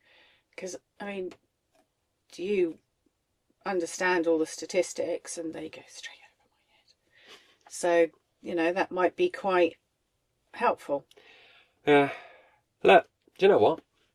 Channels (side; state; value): both; identical; correlation 1.00